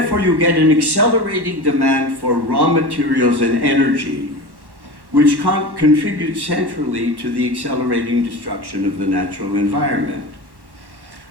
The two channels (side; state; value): left; late; 1.1 ms